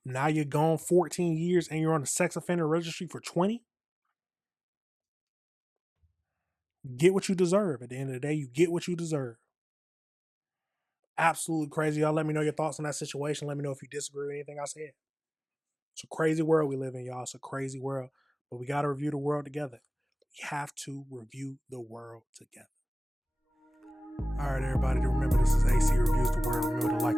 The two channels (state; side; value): normal; both; correlation 0.98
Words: Now you're gone 14 years and you're on the sex offender registry for 20? Get what you deserve. At the end of the day, you get what you deserve. Absolutely crazy. Y'all let me know your thoughts on that situation. Let me know if you disagree with anything I said. It's a crazy world we live in, y'all. It's a crazy world. But we got to review the world together. We have to review the world together. All right, everybody, remember this is AC Reviews the World. Remember to like